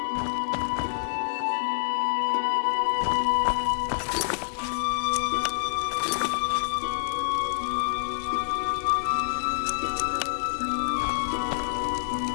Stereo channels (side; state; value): right; silent; 60 dB below the other